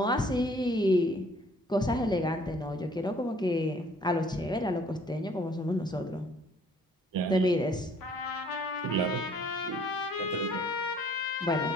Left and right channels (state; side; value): normal; both; correlation 0.58